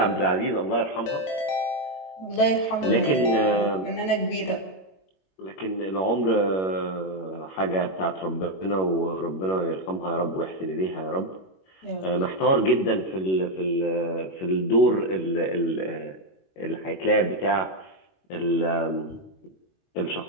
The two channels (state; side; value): late; right; 21 ms